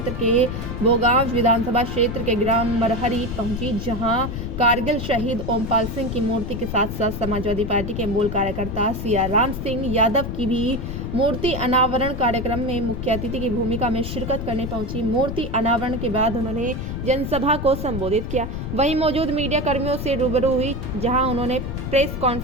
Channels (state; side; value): noise; left; rumble, 5 dB below the sound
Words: के भोगांव विधानसभा क्षेत्र के ग्राम मरहरी पहुंची, जहां कारगिल शहीद ओमपाल सिंह की मूर्ति के साथ साथ समाजवादी पार्टी के मूल कार्यकर्ता सियाराम सिंह यादव की भी मूर्ति अनावरण कार्यक्रम में मुख्य अतिथि की भूमिका में शिरकत करने पहुंची। मूर्ति अनावरण के बाद उन्होंने जनसभा को संबोधित किया। वहीं मौजूद मीडिया कर्मियों से रूबरू हुई, जहां उन्होंने प्रेस